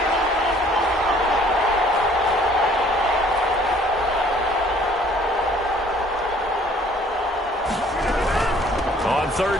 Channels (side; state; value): both; normal; correlation 0.57